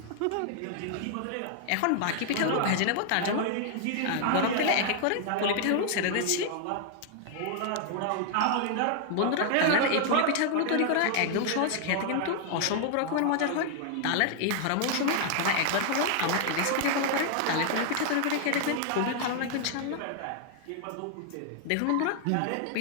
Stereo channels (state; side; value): different; both; correlation 0.00